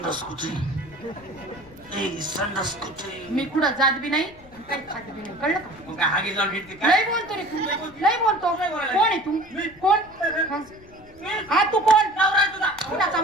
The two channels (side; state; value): left; noise; rumble, 23 dB below the sound